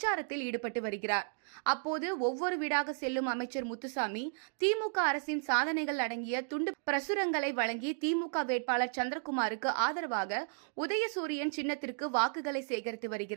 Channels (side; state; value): left; silent; digital silence